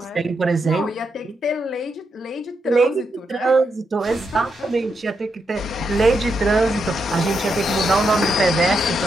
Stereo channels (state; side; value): normal; both; correlation 0.82